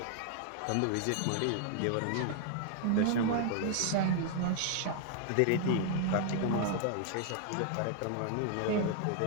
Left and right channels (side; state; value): both; different; correlation 0.00